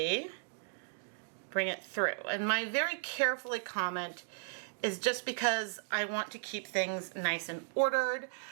bring it through. And my very carefully comment is just because I want to keep things nice and ordered.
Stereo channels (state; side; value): silent; left; digital silence